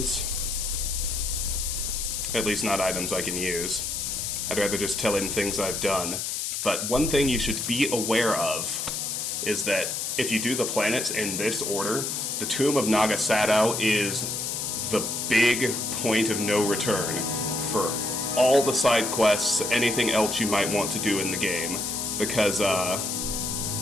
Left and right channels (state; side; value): noise; left; hiss, 2 dB below the sound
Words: At least not items I can use. I'd rather just tell him things I've done. But one thing you should be aware of is that if you do the planets in this order, the Tomb of Naga Sadow is the big point of no return for all the side quests, anything else you might want to do in the game. Because,